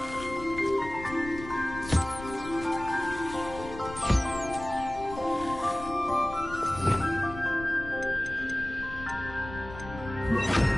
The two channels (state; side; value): noise; left; rumble, 13 dB below the sound